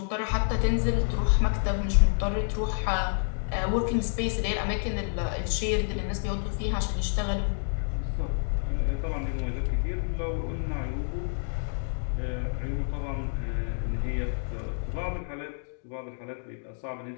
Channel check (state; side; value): silent; right; 59 dB below the other